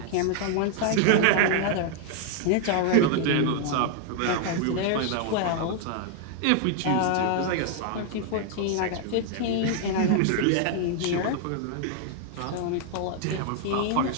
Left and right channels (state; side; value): different; both; correlation 0.00